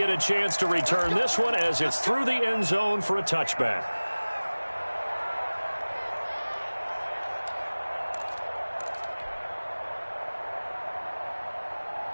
a chance to return this one as it's through the end zone for a touchback.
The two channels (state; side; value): inverted; both; correlation -1.00